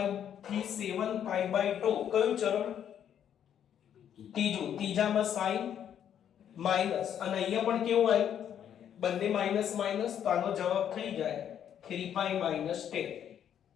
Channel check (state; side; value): quieter; right; 9.4 dB